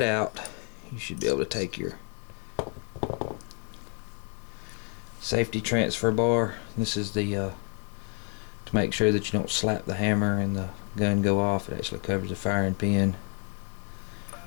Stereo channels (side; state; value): right; quieter; 37.8 dB